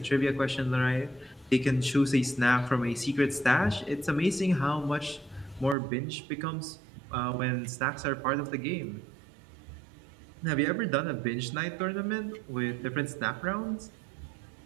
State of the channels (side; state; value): left; drops out; at 5.8 s